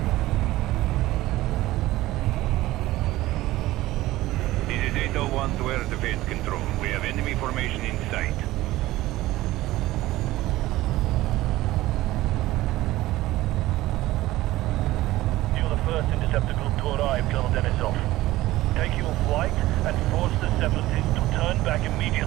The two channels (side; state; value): left; quieter; 16.9 dB